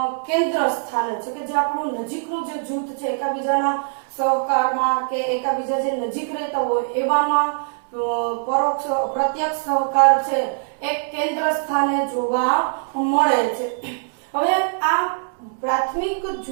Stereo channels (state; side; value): silent; left; 64 dB below the other